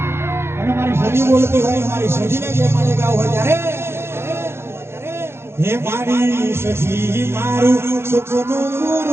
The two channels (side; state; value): left; late; 0.12 ms